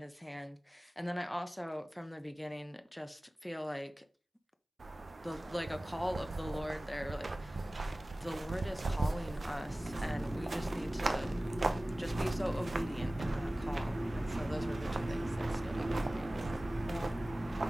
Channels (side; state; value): both; normal; correlation 0.97